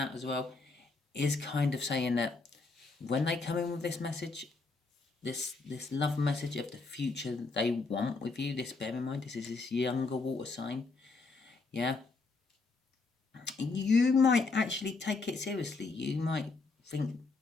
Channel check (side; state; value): right; quieter; 3.9 dB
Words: as well is kind of saying that when they come in with this message, this love message of the future they want with you, this, bear in mind, this is this younger water sign. Yeah. You might actually take it seriously. You might think,